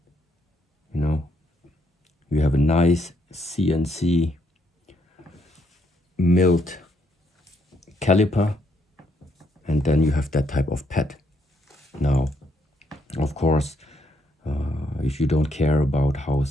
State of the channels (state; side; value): normal; both; correlation 0.74